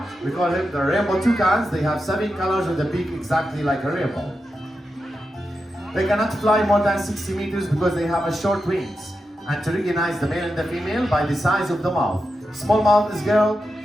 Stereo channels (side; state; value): both; normal; correlation 0.88